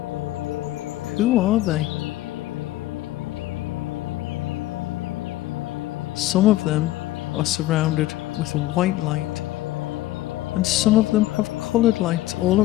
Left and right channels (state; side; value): quieter; right; 15.8 dB